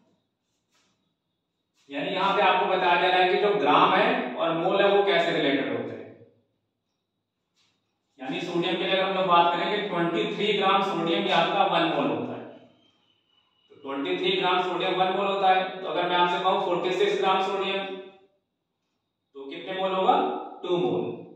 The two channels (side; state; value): both; identical; correlation 1.00